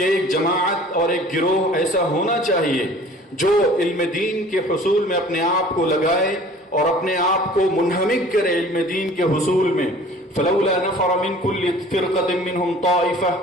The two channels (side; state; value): both; normal; correlation 0.48